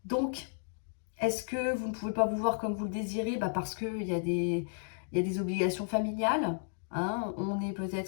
Donc, est-ce que vous ne pouvez pas vous voir comme vous le désirez? Parce qu'il y a des obligations familiales. Hein, on est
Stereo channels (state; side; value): silent; right; digital silence